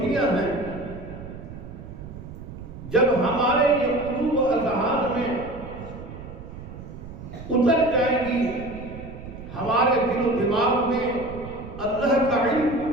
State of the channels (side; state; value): right; noise; rumble, 13 dB below the sound